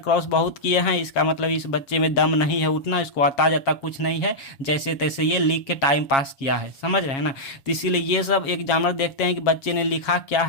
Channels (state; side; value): late; right; 7.4 ms